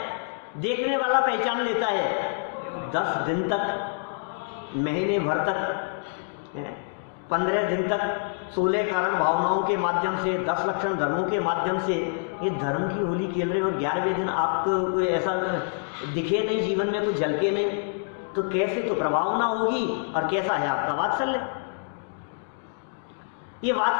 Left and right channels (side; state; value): right; silent; digital silence